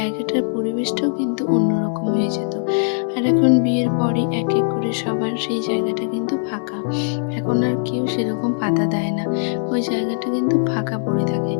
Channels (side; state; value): right; silent; digital silence